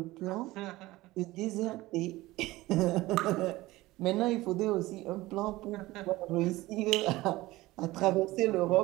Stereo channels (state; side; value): quieter; left; 18.7 dB